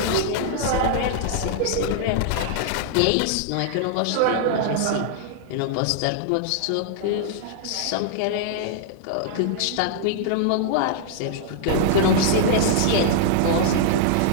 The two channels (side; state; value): both; different; correlation -0.01